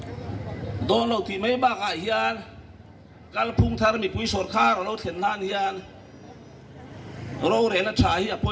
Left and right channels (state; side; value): identical; both; correlation 1.00